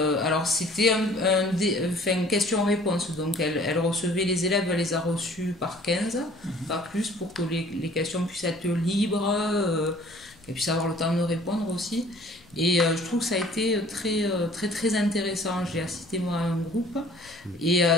une question-réponse. Donc, elle recevait les élèves, elle les a reçus par 15, pas plus, pour que les questions puissent être libres, qu'elles puissent avoir le temps de répondre aussi. Et je trouve que ça a été très intéressant. J'ai assisté moi à un groupe et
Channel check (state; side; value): noise; left; rumble, 27 dB below the sound